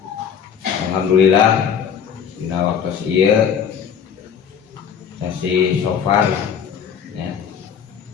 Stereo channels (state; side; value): quieter; right; 7.6 dB